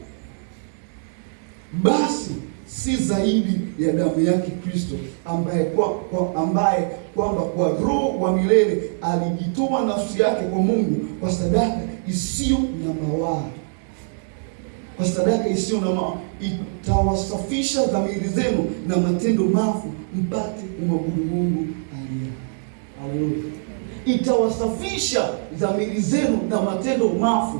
basi si zaidi ya damu yake Kristo, ambaye kwamba kwa Roho wa milele alijitoa nafsi yake kwa Mungu kwa sadaka isiyo na mawaa. Kwa sadaka isiyo na mawaa, itawasafisha dhamiri zenu na matendo mafu, mpate kumwabudu Mungu aliye hai. Haleluya. Itawasafisha dhamiri zenu na matendo mafu,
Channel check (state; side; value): silent; left; 64 dB below the other